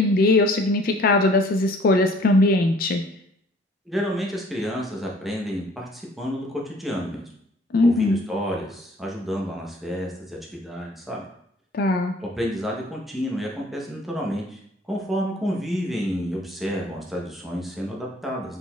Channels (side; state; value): both; normal; correlation 0.55